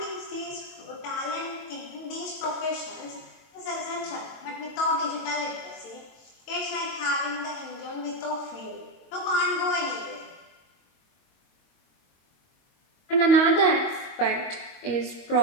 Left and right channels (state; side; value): late; right; 22 ms